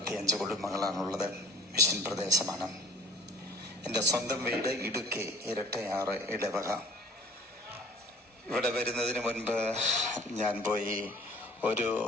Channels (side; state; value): both; normal; correlation 0.49